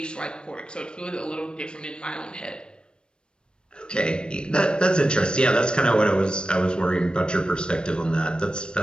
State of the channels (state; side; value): late; right; 0.054 ms